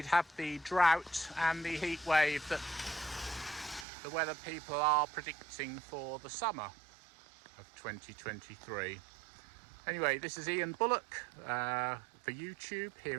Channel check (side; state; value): left; drops out; at 3.9 s